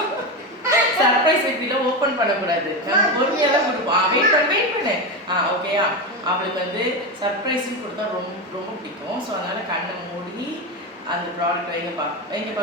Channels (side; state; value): both; normal; correlation 0.16